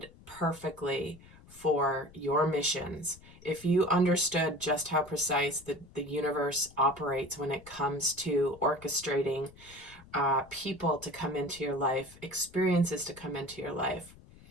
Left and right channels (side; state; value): left; noise; rumble, 22 dB below the sound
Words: perfectly for your missions. If you understood just how precise the universe operates when it comes to orchestrating people to come into your life, experiences to come into your life,